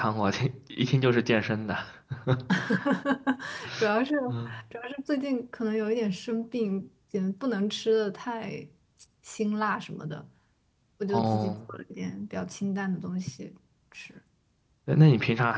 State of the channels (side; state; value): both; identical; correlation 1.00